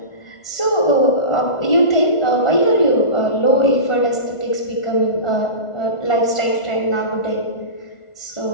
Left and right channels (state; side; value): late; right; 1.4 ms